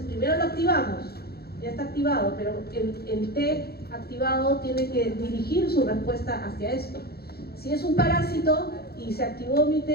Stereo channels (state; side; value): late; right; 0.46 ms